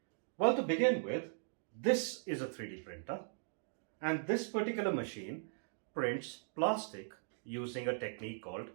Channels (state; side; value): silent; left; digital silence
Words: Well, to begin with, this is a 3D printer, and this particular machine prints plastic using a technique called